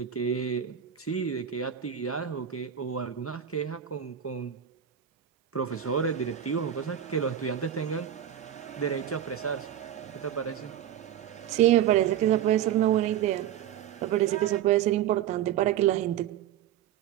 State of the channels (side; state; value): left; quieter; 10.2 dB